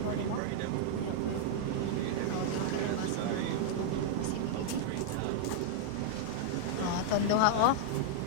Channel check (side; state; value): both; different; correlation -0.01